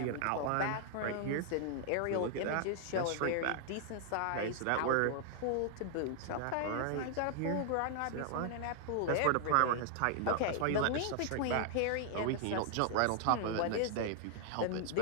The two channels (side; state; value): both; different; correlation -0.01